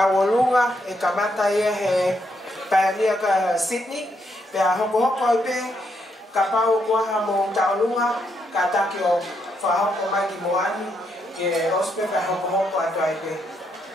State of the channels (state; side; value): normal; both; correlation 0.77